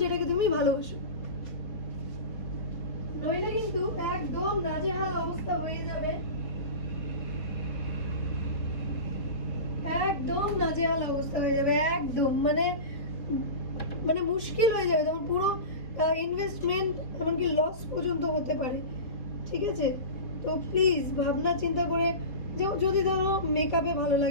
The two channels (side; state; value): right; late; 4.2 ms